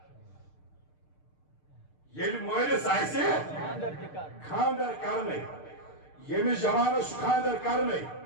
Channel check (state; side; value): late; right; 6.7 ms